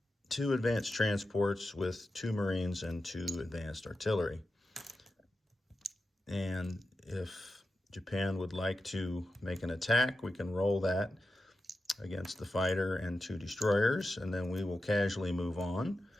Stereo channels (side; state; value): both; normal; correlation 0.91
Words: 2 advanced transports with 2 Marines and 2 advanced artillery. And if Japan would like to make an attack, we can roll that against the fighter and 2 destroyers, and then we will casually move on.